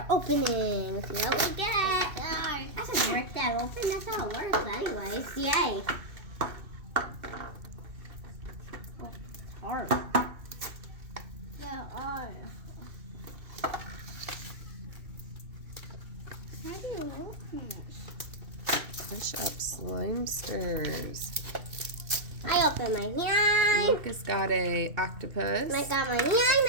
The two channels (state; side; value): late; left; 2.7 ms